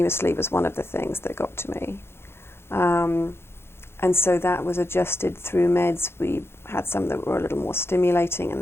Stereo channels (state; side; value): late; right; 0.12 ms